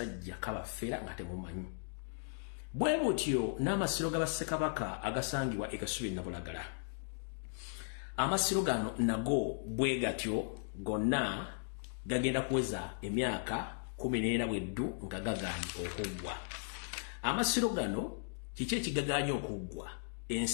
kabafera nga temumanyi bwe butyo n'amasiro g'abassekabaka agasangibwa ekasubi Nabulagala amasiro gano nago bwe gatyo gonna gagenda kuweza emyaka 14 bweddu nga gaganye okuggwa amasiro gano kiki ekigaganye okuggwa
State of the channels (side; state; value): right; silent; digital silence